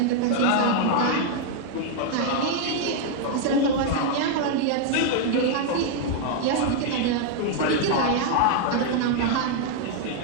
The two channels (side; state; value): both; different; correlation 0.00